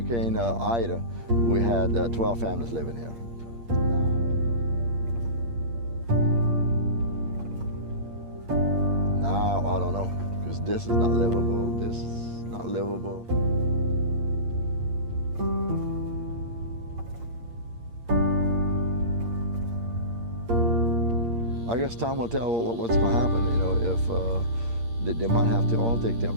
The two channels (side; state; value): left; late; 8.6 ms